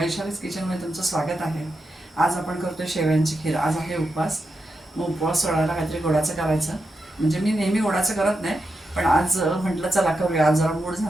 किचनमध्ये तुमचं स्वागत आहे. आज आपण करतोय शेवयांची खीर. आज आहे उपवास. मग उपवास सोडायला काहीतरी गोडाचं करायचं. म्हणजे मी नेहमी गोडाचं करत नाही, पण आज म्हटलं चला करूया. आज जरा मूड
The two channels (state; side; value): normal; both; correlation 0.87